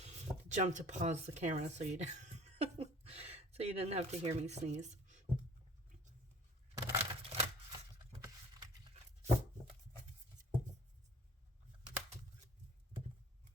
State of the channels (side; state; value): both; normal; correlation 0.49